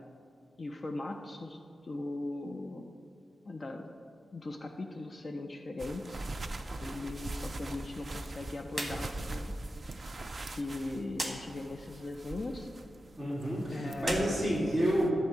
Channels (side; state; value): both; normal; correlation 0.91